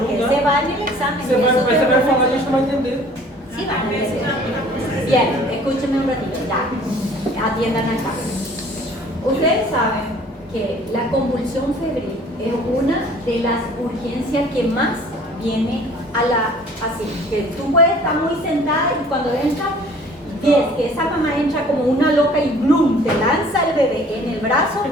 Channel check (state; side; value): normal; both; correlation 0.52